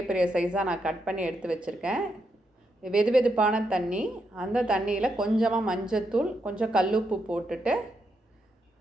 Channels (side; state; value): both; normal; correlation 0.81